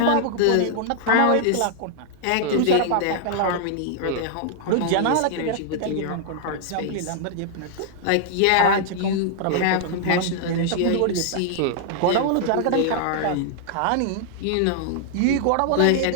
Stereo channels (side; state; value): both; different; correlation -0.01